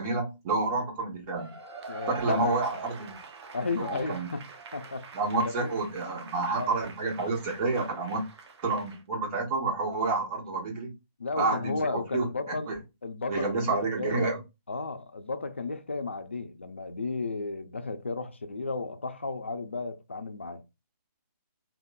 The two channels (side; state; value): both; inverted; correlation -0.43